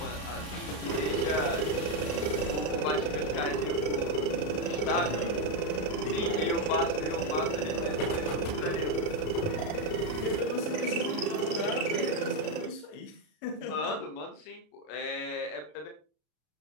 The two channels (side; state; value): right; late; 33 ms